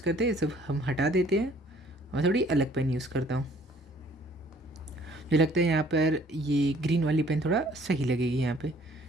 करते हैं, सब हम हटा देते हैं, मैं थोड़ी अलग पेन यूज़ करता हूँ। मुझे लगता है यहाँ पर ये ग्रीन वाली पेन थोड़ा सही लगेगी यहाँ पे।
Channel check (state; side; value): normal; both; correlation 0.58